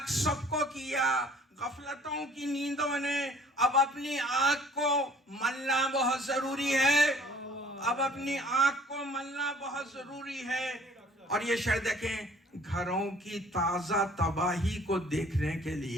سب کو کیا غفلتوں کی نیندوں نے، اب اپنی آنکھ کو ملنا بہت ضروری ہے، اب اپنی آنکھ کو ملنا بہت ضروری ہے۔ اور یہ شعر دیکھیں، گھروں کی تازہ تباہی کو دیکھنے کے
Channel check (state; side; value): normal; both; correlation 0.54